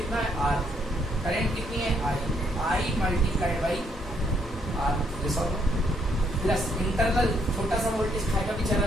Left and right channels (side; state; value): both; normal; correlation 0.71